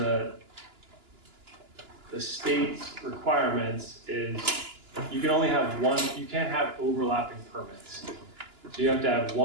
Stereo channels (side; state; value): left; late; 2.9 ms